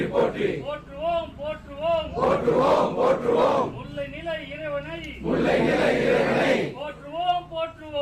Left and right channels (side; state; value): both; identical; correlation 1.00